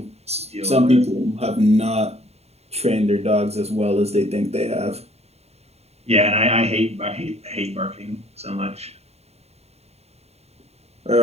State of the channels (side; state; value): left; late; 0.30 ms